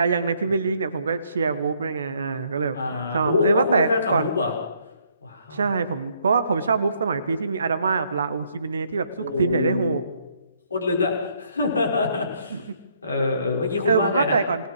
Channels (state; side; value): inverted; both; correlation -0.68